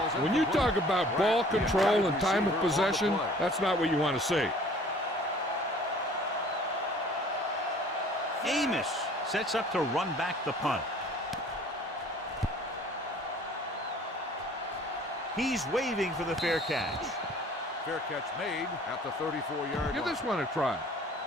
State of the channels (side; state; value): both; normal; correlation 0.51